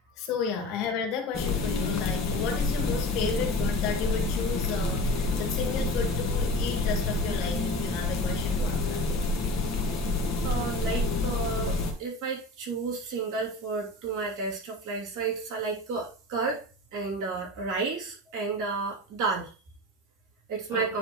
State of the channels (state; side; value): normal; both; correlation 0.34